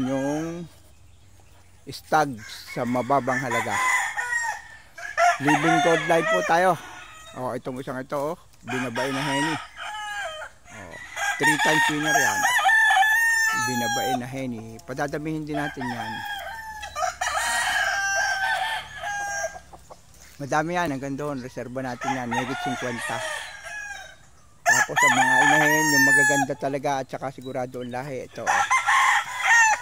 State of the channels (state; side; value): identical; both; correlation 1.00